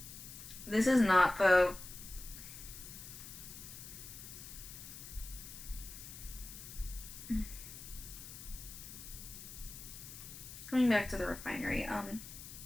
not the. Going back to the refinery,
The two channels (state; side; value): noise; left; hiss, 12 dB below the sound